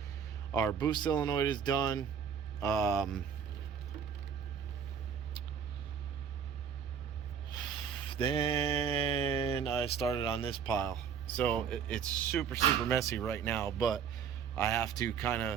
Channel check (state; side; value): quieter; left; 7.4 dB